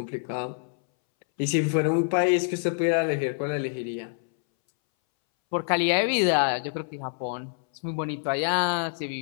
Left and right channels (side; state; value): right; silent; 61 dB below the other